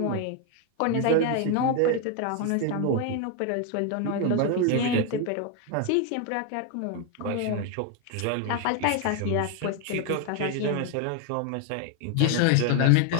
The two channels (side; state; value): both; different; correlation 0.01